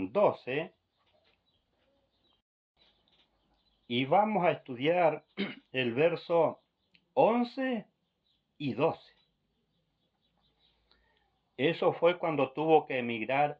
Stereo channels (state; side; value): identical; both; correlation 1.00